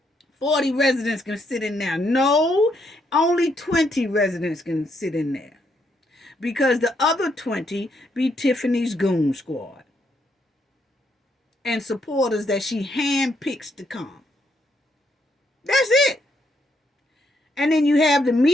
40 residents can sit in there. No. Only 20 residents can sit in there. Because the other 20 be Tiffany's goon squad. And supporters that she handpicks to come. That's it. And then you have the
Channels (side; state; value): both; normal; correlation 0.75